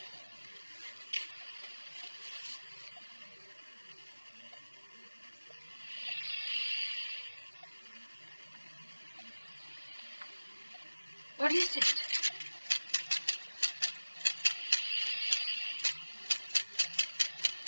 What is it?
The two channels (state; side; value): inverted; both; correlation -1.00